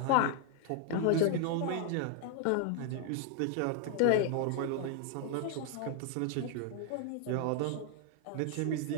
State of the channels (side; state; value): both; different; correlation 0.00